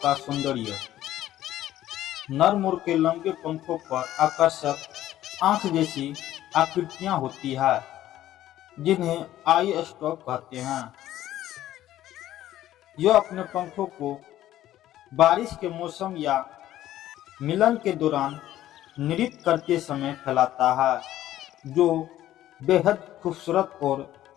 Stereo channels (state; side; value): quieter; right; 13.4 dB